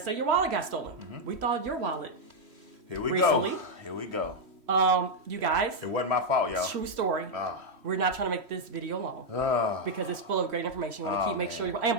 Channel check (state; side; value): late; left; 3.1 ms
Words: say your wallet got stolen, we thought your wallet. Here we recently. go. Here we go. You guys. It wasn't my fault, y'all. True story. We're not trying to make this video long because it's full of great information. You want to make sure you,